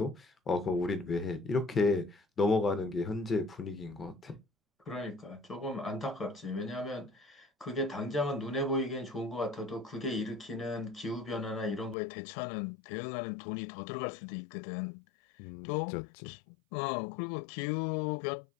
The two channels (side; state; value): right; drops out; at 12.0 s